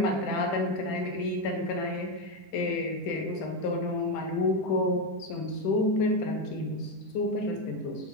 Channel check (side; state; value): right; late; 10 ms